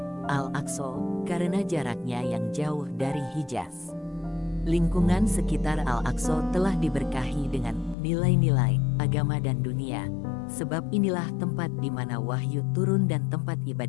Al-Aqsa karena jaraknya yang jauh dari Hijaz. Lingkungan sekitar Al-Aqsa telah diberkahi dengan nilai-nilai agama dan dunia, sebab inilah tempat di mana wahyu turun dan tempat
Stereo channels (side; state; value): right; drops out; at 8.0 s